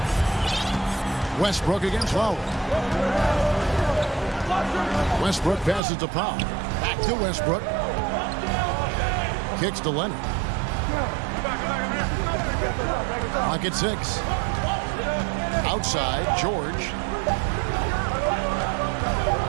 Westbrook against Lowry. Westbrook passes to Powell. Back to Westbrook. Kicks to Leonard. Clock at 6. Outside, George.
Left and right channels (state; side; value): drops out; left; at 5.8 s